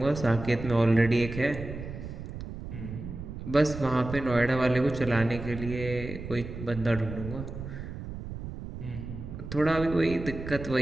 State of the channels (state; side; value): noise; right; rumble, 9 dB below the sound